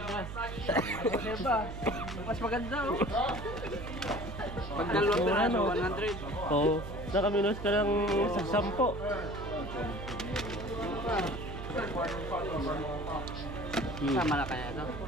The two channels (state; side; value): noise; right; hum, 8 dB below the sound